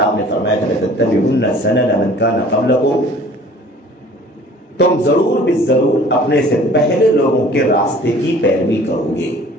آپ نے فرمایا تھا لَتَتَّبِعُنَّ سَنَنَ مَنْ كَانَ قَبْلَكُمْ، تم ضرور بالضرور اپنے سے پہلے لوگوں کے راستے کی پیروی کرو گے.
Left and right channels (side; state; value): both; normal; correlation 0.50